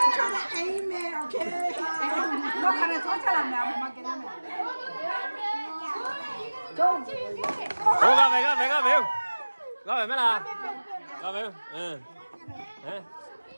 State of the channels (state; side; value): inverted; both; correlation -1.00